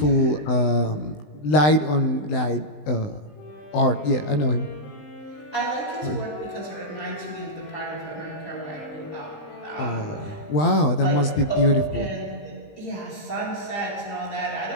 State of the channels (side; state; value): right; late; 20 ms